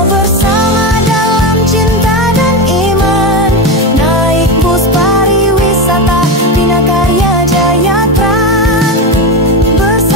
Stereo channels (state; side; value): normal; both; correlation 0.16